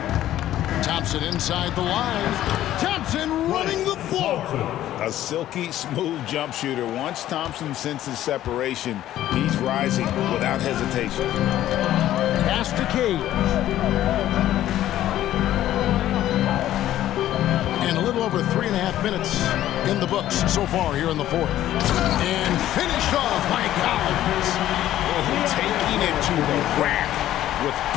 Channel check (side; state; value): right; quieter; 13.1 dB